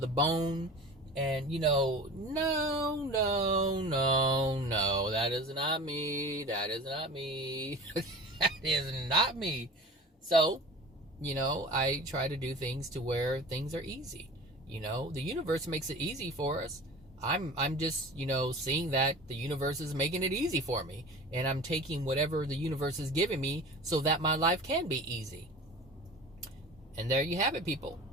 bone. And, you know, no, that is not me. That is not me. That is not me. So, you know, I try to do things to where things are easy. You know, the universe makes it easy for us. I'm just, you know, seeing that the universe is making it easy for me. And I'm taking whatever the universe is giving me so that my life can be easy. And there you have it, people.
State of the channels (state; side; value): normal; both; correlation 0.38